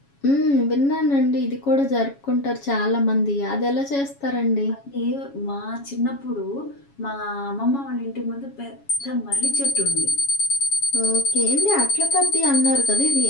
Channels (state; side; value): late; right; 7.2 ms